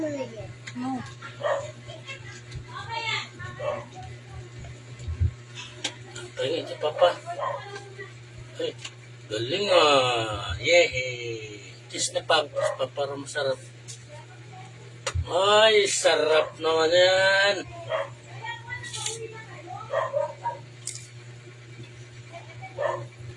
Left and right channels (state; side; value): identical; both; correlation 1.00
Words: No. Tingin si Papa. Ay, galing ah. Yehey. Cheese na pag. Para masarap. Ay, sarap naman yan.